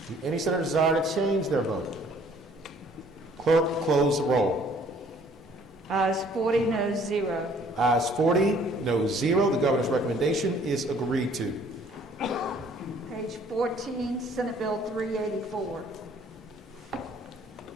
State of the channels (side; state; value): both; normal; correlation 0.58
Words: any senator desire to change their vote? Clerk, close the roll. Ayes 40, no 0. Ayes 40, no 0. The governor's recommendation is agreed to. Page 14, Senate Bill 384.